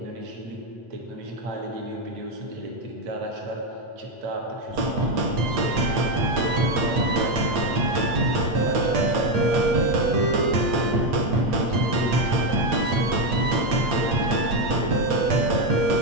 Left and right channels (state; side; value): late; left; 8.6 ms